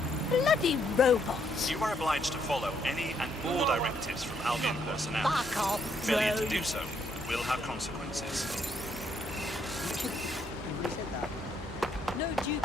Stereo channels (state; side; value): normal; both; correlation 0.72